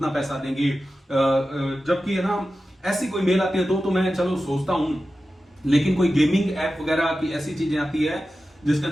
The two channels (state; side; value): normal; both; correlation 0.93